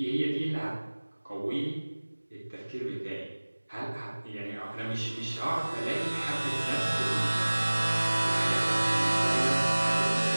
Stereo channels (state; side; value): inverted; both; correlation -1.00